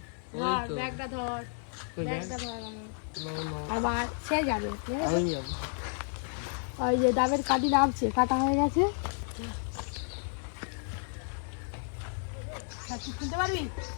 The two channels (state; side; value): silent; right; 57 dB below the other